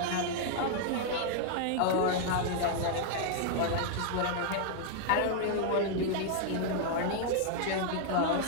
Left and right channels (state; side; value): different; both; correlation 0.00